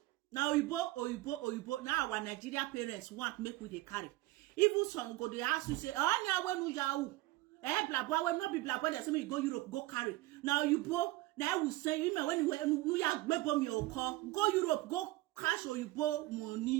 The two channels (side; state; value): left; quieter; 18.6 dB